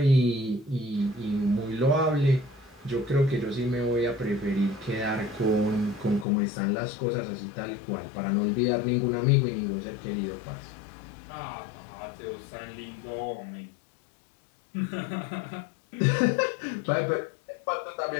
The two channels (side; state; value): right; drops out; at 6.2 s